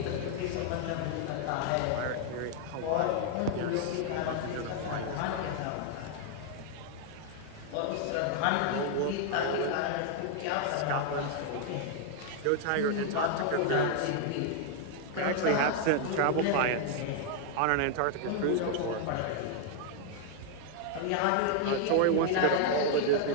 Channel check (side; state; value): both; different; correlation 0.00